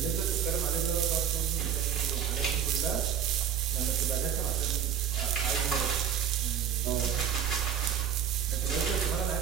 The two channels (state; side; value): quieter; left; 8.8 dB